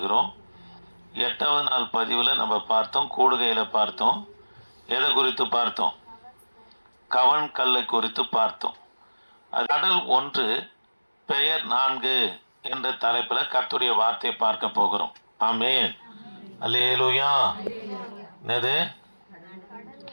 8வது நாள் பதிவில் நம்ம பார்த்தோம், கூடுகையில் பார்த்தோம். எதை குறித்து பார்த்தோம்? கவன் கல்லை குறித்து பார்த்தோம். கடல் 1 பெயர் 4 என்ற தலைப்பில் கர்த்தருடைய வார்த்தையை பார்க்க போகிறோம். ஆமென், அல்லேலூயா. என்னது?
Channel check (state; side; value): inverted; both; correlation -1.00